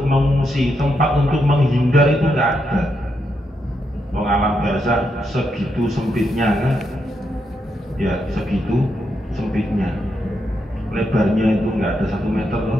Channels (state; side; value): normal; both; correlation 0.81